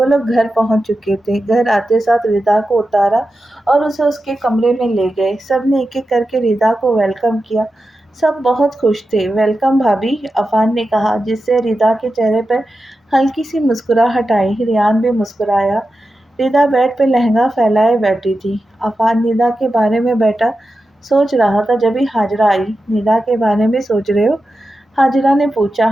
لوگ گھر پہنچ چکے تھے۔ گھر آتے ساتھ ردا کو اتارا اور اسے اس کے کمرے میں لے گئے۔ سب نے ایک ایک کر کے ردا کو ویلکم کیا۔ سب بہت خوش تھے۔ ویلکم بھابھی، عفان نے کہا، جس سے ردا کے چہرے پر ہلکی سی مسکراہٹ آئی۔ ریان بھی مسکرایا۔ ردا بیڈ پہ لہنگا پھیلائے بیٹھی تھی۔ عفان ندا کے بارے میں بیٹھا سوچ رہا تھا جبھی حاجرہ آئی۔ ندا کے بارے میں سوچ رہے ہو؟ حاجرہ نے پوچھا۔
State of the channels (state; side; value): normal; both; correlation 0.91